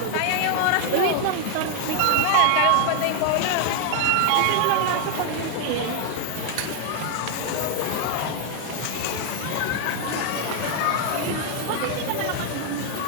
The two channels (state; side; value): different; both; correlation 0.00